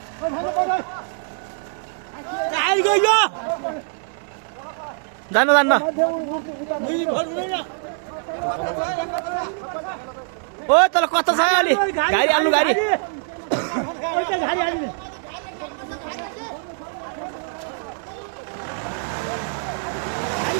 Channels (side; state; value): left; silent; digital silence